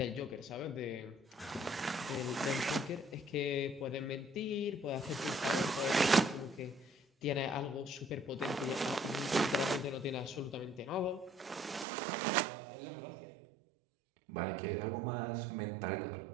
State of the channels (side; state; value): left; drops out; at 11.9 s